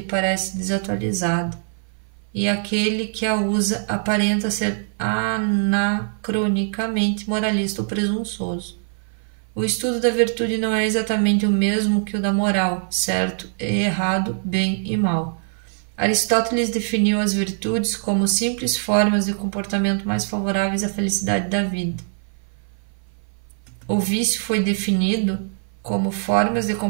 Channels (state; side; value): silent; left; 56 dB below the other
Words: parece desatualizada, e aquele que a usa aparenta ser anacronicamente moralista ou presunçoso. O estudo da virtude não é exatamente o mesmo que o da moral, certo e errado, bem e mal. Aristóteles definiu as virtudes como simples formas de comportamento mais favoráveis à felicidade da vida. O vício foi definido como formas de